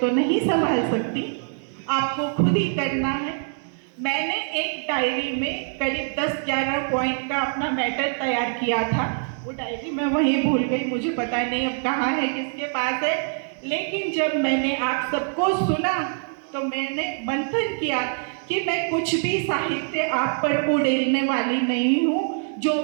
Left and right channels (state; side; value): silent; left; 61 dB below the other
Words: नहीं संभाल सकती, आपको खुद ही करना है। मैंने एक डायरी में करीब 10-11 पॉइंट का अपना मैटर तैयार किया था। वो डायरी मैं वहीं भूल गई, मुझे पता नहीं अब कहाँ है, किसके पास है। लेकिन जब मैंने आप सबको सुना तो मैंने मंथन किया कि मैं कुछ भी साहित्य आप पर उड़ेलने वाली नहीं हूँ। जो